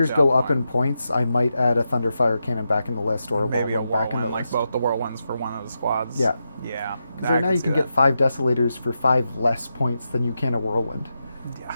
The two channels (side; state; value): both; inverted; correlation -0.87